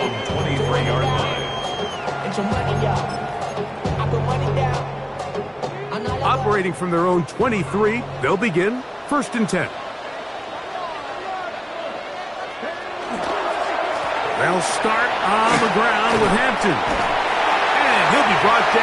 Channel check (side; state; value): both; identical; correlation 1.00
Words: 23-yard line. Operating from their own 23, they'll begin 1st and 10. They'll start on the ground with Hampton. And he'll be brought